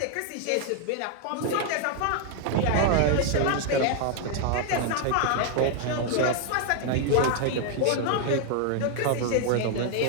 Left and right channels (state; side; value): different; both; correlation 0.00